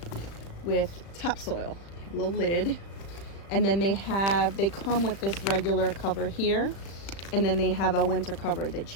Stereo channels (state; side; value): late; right; 35 ms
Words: with topsoil, a little lid, and then they come with this regular cover here, and then they have a winter cover that